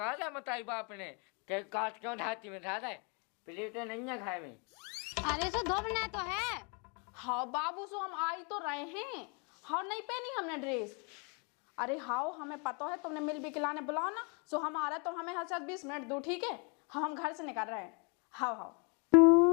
है मताई बाप ने के काट क्यों ढाती में ढा दे प्लेटें नहीं है खाए में। अरे सो धोबना तो है। हाँ बाबू सो हम आई तो रहे हैं। हाँ नहीं पहनी हमने ड्रेस। अरे हाँ हमें पता है तुमने मिल भी खिलाने बुलाओ ना सो हम आ रहे तो हमें हर 20 मिनट दो ठीक है। हाँ हम घर से निकल रहे हैं। हाँ हाँ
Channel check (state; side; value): quieter; right; 35.1 dB